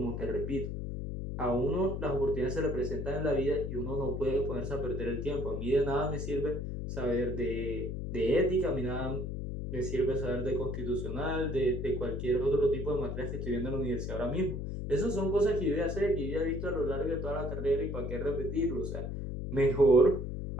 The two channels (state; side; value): noise; left; hum, 4 dB below the sound